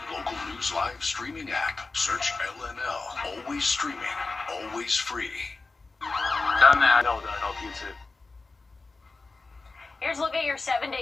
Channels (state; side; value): quieter; right; 3.7 dB